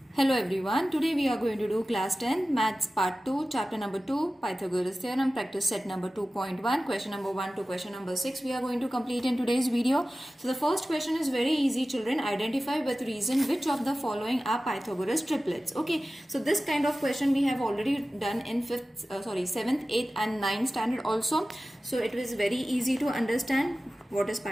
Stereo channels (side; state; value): both; normal; correlation 0.96